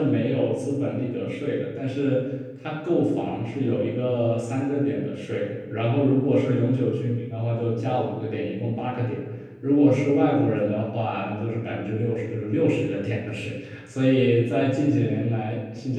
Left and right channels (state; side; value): identical; both; correlation 1.00